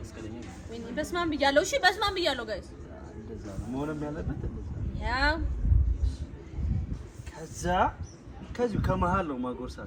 በስማም ብያለሁ። እሺ በስማም ብያለሁ። ጋይስ እንደዛ ነው መሆንም ያለበት። ያው ከዚሁ ከመሃል ነው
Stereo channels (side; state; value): both; identical; correlation 1.00